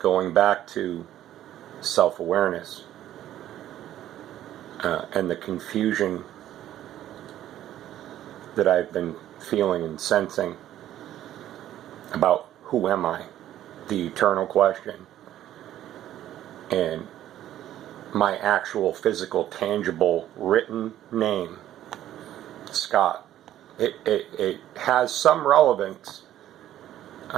back to self-awareness and the confusion that I've been feeling and sensing about who am I, the eternal question, and my actual physical, tangible, written name, Scott. It has some relevance.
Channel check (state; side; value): quieter; left; 12.4 dB